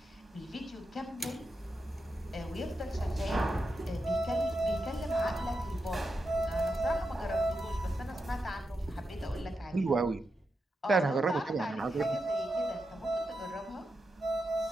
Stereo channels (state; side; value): normal; both; correlation 0.87